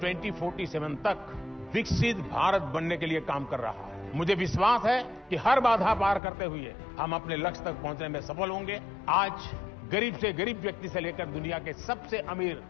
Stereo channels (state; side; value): drops out; right; at 6.2 s